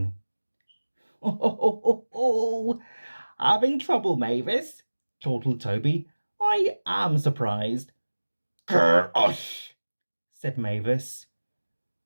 "Oh, having trouble, Mavis?" chortled Toby. "I am surprised." "Grr-osh," said Mavis.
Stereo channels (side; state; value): both; inverted; correlation -1.00